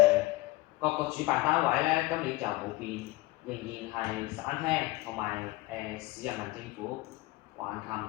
各個主辦單位咧，今年就冇變，仍然係省廳同埋市人民政府、橫琴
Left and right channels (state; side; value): quieter; right; 20.1 dB